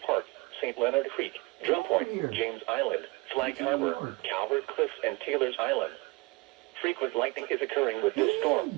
Park, St. Leonard Creek, Drum Point, James Island, Flag Harbor, Calvert Cliffs, and Taylor's Island. Frequent lightning is occurring with this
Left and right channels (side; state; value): left; quieter; 24.8 dB